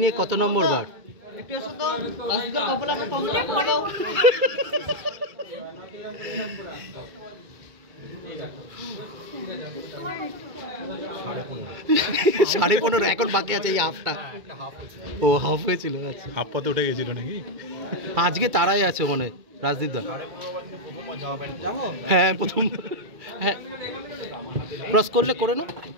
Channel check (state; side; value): late; left; 2.4 ms